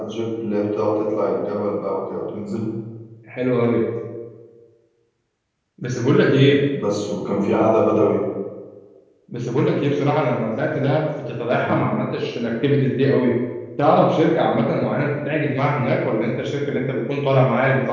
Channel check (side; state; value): both; identical; correlation 1.00